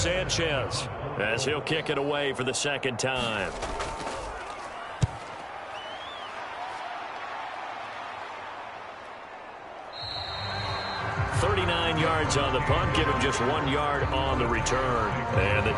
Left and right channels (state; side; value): identical; both; correlation 1.00